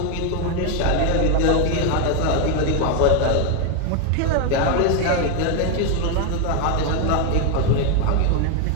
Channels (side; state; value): both; different; correlation 0.01